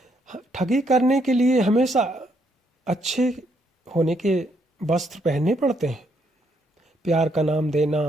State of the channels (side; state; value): both; normal; correlation 0.73